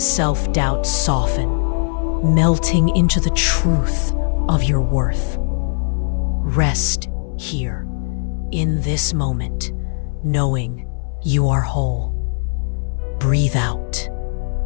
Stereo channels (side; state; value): right; silent; digital silence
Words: soften, melting into the truth of your worth. Rest here, in this moment, knowing you are whole. Breathe out